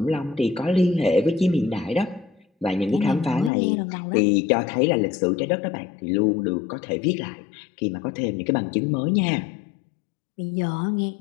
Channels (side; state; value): right; drops out; at 3.5 s